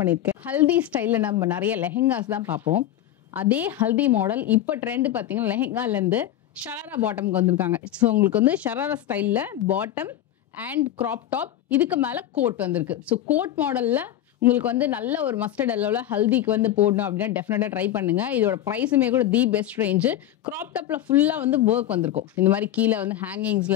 பண்ணிருக்கேன். ஹல்தி ஸ்டைல்ல நம்ம நிறைய லெஹெங்காஸ் தான் பார்ப்போம். அதே ஹல்தி மாடல் இப்போ ட்ரெண்ட் பார்த்தீங்கன்னா லெஹெங்கால இருந்து ஷராரா பாட்டம்க்கு வந்திருக்காங்க. ஸோ உங்களுக்கு வந்து ஷராரா ஸ்டைல்ல பாட்டம் அண்ட் கிராப் டாப், இதுக்கு மேல கோட் வந்திருக்கு. ஸோ கோட் மாடல்ல உங்களுக்கு வந்து நல்ல ஒரு மஸ்டர்ட் எல்லோல ஹல்திக்கு வந்து போடணும் அப்படின்னா டெஃபினட்டா ட்ரை பண்ணுங்க. இதோட பிரைஸுமே கூட தி பெஸ்ட் ரேஞ்சு. கிராப் டாப்ல ஃபுல்லா வந்து ஒர்க் வந்திருக்கும். இந்த மாதிரி கீழே வந்து ஹேங்கிங்ஸ்ல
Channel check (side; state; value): right; quieter; 12.3 dB